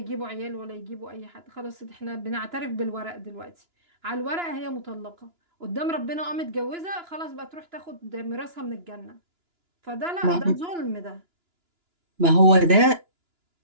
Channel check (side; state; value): left; late; 2.9 ms